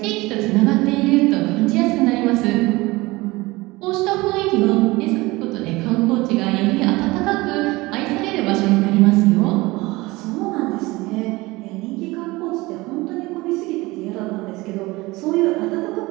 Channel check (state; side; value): quieter; left; 21.4 dB